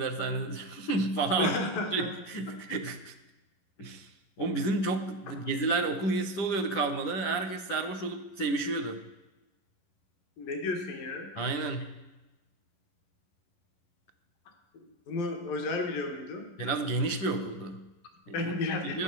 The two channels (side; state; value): right; late; 11 ms